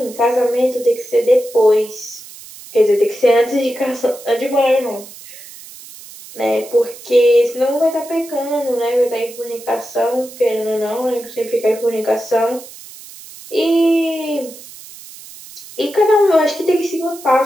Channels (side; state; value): right; noise; hiss, 17 dB below the sound